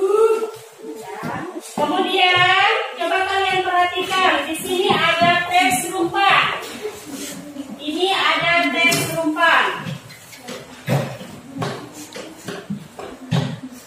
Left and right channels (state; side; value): identical; both; correlation 1.00